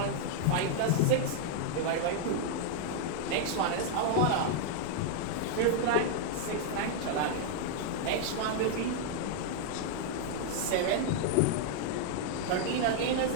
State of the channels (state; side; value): different; both; correlation 0.00